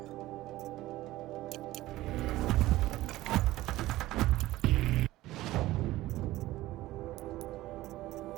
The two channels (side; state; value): left; quieter; 16.7 dB